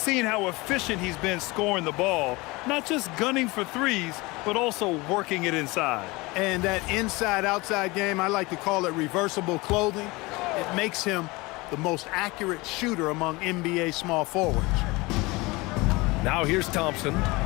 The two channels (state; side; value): quieter; right; 23.4 dB